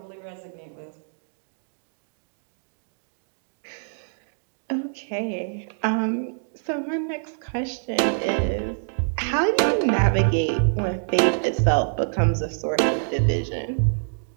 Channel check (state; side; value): silent; left; digital silence